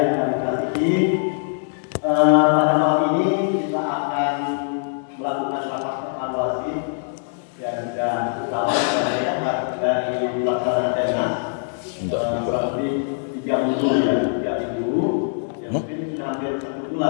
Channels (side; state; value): right; silent; digital silence